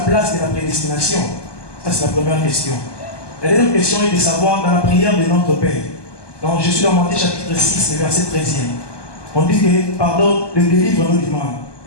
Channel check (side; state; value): right; late; 1.2 ms